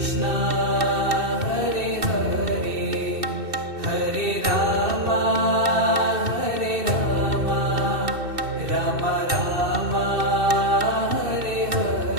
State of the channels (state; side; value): late; left; 2.6 ms